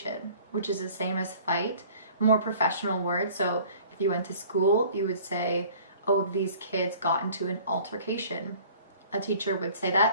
which is the same as fight, more professional word. So if you went to school, you would say, oh, these kids got into an altercation. A teacher would say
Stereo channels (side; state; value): both; inverted; correlation -0.50